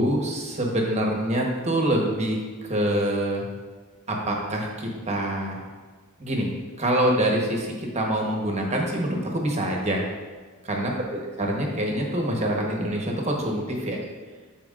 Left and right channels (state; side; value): normal; both; correlation 0.40